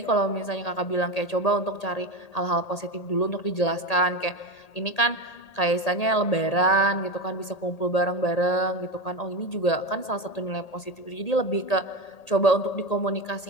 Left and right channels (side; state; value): right; late; 1.8 ms